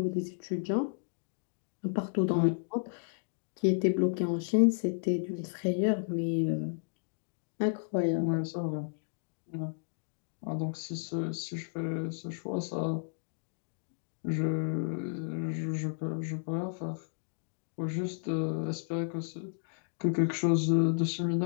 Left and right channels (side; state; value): right; silent; digital silence